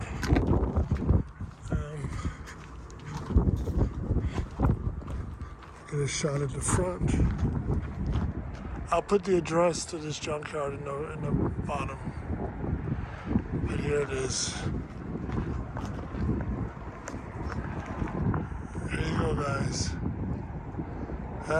Get a shot at the front. I'll put the address to this junkyard in the bottom. But here it is. There you go, guys.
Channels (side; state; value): both; identical; correlation 1.00